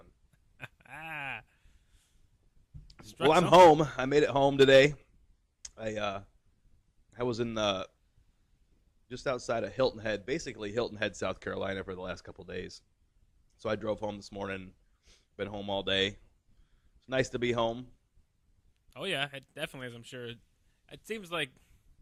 Struck Well, I'm something. home. I made it home today. I was in just outside of Hilton Head, basically Hilton Head, South Carolina, for the last couple days. So I drove home this morning. Been home all day. It's nice to be home. Oh yeah, it definitely is. I'm sure. It seems like.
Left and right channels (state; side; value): identical; both; correlation 1.00